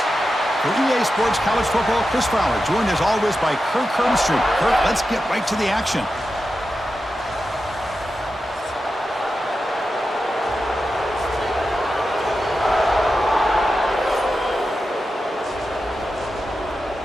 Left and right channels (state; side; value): normal; both; correlation 0.90